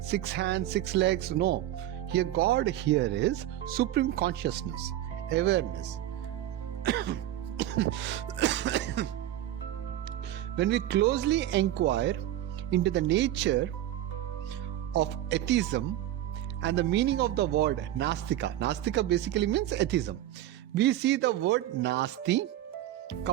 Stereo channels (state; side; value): quieter; left; 13.1 dB